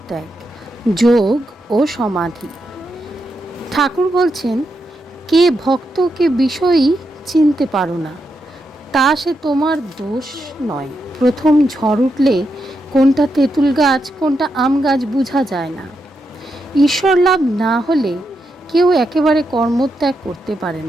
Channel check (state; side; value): normal; both; correlation 0.84